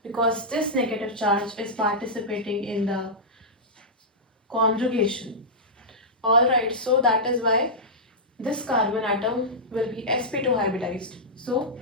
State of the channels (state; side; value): normal; both; correlation -0.12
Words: because this negative charge is participating in the conjugation. Alright, so that is why this carbon atom will be sp2 hybridized. So